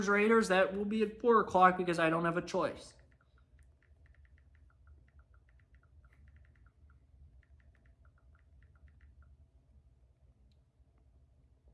Raiders, that will be at 4 o'clock because I don't have a choice.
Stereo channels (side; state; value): both; identical; correlation 1.00